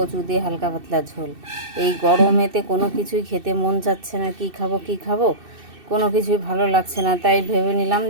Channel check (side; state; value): left; late; 2.6 ms